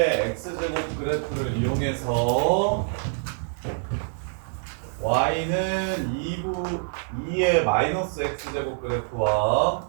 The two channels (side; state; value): left; silent; 61 dB below the other